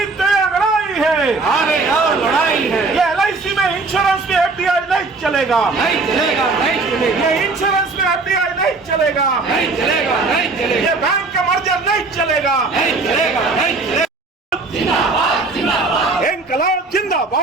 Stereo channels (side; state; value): left; quieter; 3.8 dB